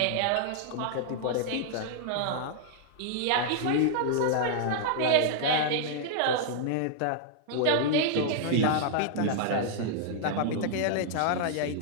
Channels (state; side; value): different; both; correlation -0.01